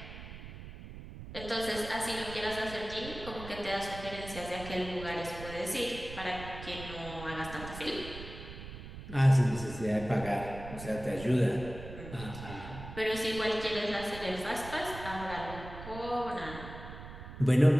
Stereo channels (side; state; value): right; noise; rumble, 12 dB below the sound